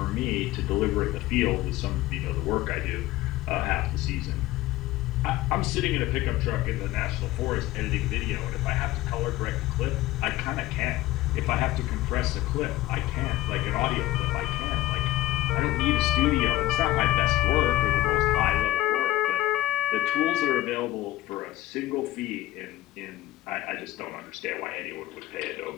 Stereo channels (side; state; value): right; quieter; 16.4 dB